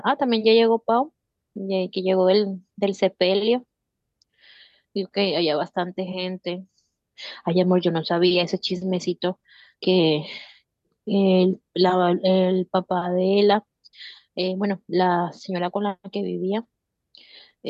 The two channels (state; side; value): identical; both; correlation 1.00